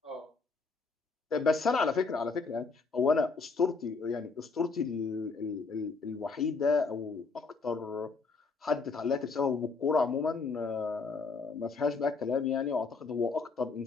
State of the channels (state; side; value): quieter; right; 4.4 dB